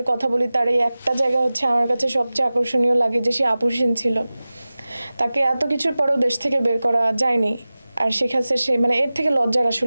কথা বলি, তার এই একটা জায়গা হচ্ছে আমার কাছে সবচেয়ে আকর্ষণীয় লাগে যে সে আপোষহীন ছিল। তাকে এত কিছুর পরেও দেশ থেকে বের করা যায়নি। আর শেখ হাসিনা সে মানে এর থেকে লজ্জার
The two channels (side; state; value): both; inverted; correlation -0.97